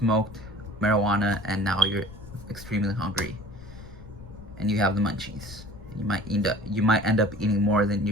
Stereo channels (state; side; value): noise; left; rumble, 16 dB below the sound